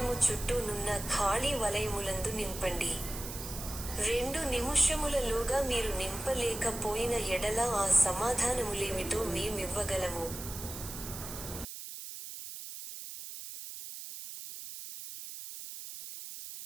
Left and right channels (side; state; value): right; noise; hiss, 10 dB below the sound